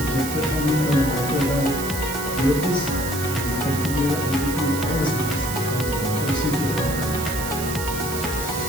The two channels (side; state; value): right; noise; hiss, 7 dB below the sound